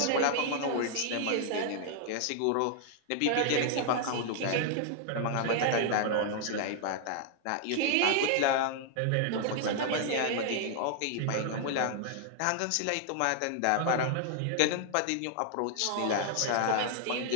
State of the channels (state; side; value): different; both; correlation 0.00